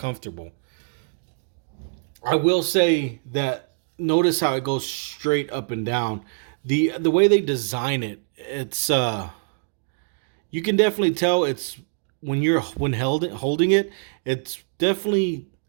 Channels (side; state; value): left; silent; digital silence